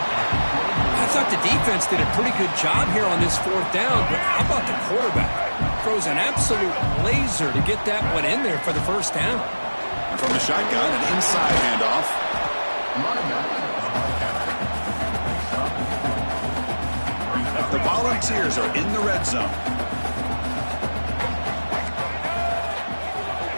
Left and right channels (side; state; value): both; inverted; correlation -1.00